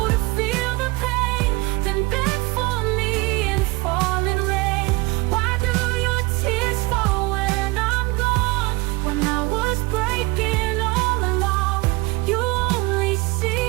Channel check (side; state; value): left; quieter; 23.8 dB